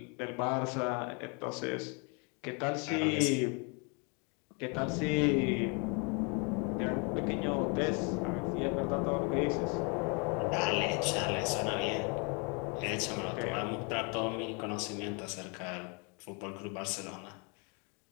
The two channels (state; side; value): quieter; right; 34.2 dB